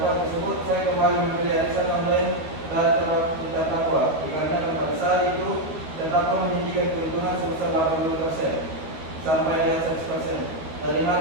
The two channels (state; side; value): late; left; 12 ms